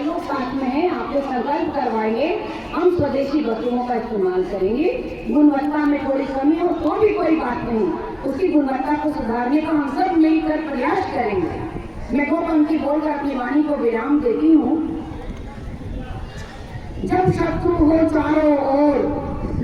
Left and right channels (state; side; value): identical; both; correlation 1.00